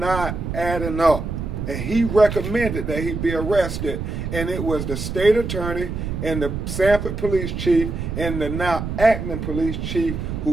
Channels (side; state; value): right; noise; rumble, 4 dB below the sound